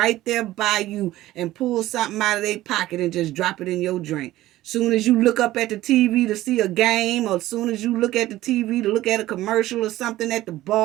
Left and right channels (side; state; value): left; quieter; 15.7 dB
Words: there by you and pull something out of their pocket and just drop it in your drink. Soon as you look up at the TV to see a game, or soon as you look at the TV to look at a commercial or something at the